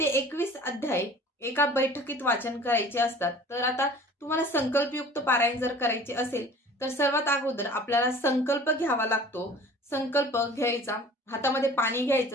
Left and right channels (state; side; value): normal; both; correlation 0.45